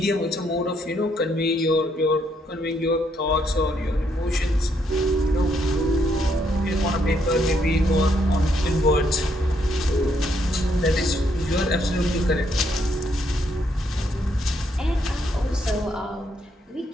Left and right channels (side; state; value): both; normal; correlation 0.74